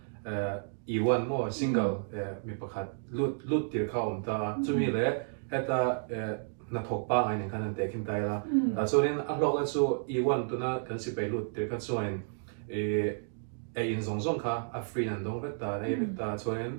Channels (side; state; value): left; silent; digital silence